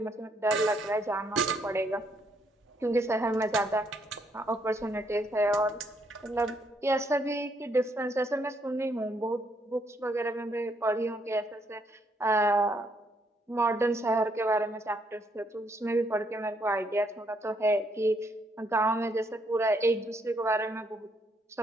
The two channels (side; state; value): both; normal; correlation 0.72